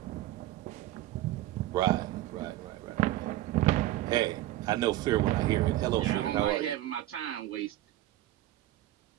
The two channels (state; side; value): quieter; left; 15.1 dB